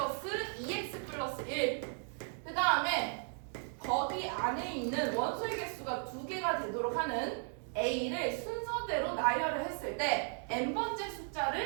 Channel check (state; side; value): silent; left; 54 dB below the other